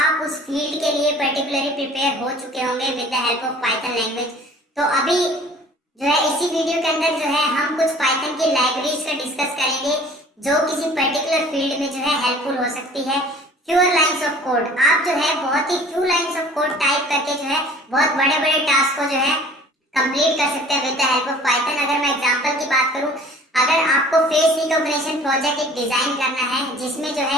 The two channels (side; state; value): both; normal; correlation 0.49